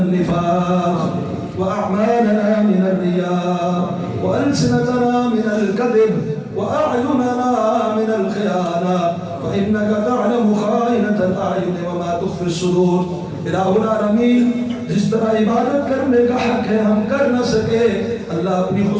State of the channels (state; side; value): identical; both; correlation 1.00